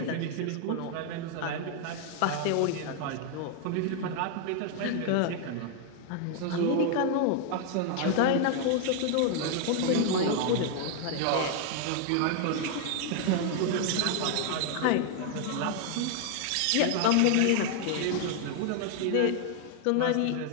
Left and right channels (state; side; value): different; both; correlation 0.00